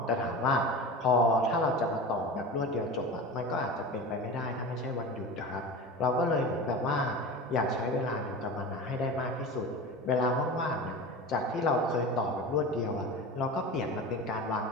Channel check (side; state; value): both; normal; correlation 0.30